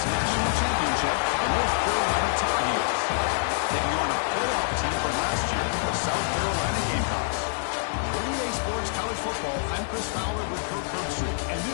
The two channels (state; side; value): silent; right; digital silence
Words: national championship, the North Carolina Tar Heels, taking on a playoff team from last year, the South Carolina Gamecocks. For EA Sports College Football, I'm Chris Fowler with Kirk Herbstreit, and